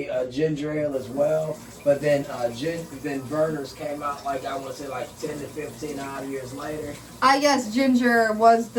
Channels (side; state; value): both; identical; correlation 1.00